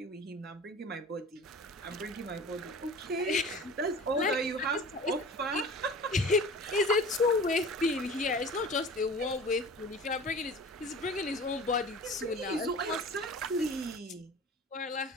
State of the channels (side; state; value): both; normal; correlation 0.40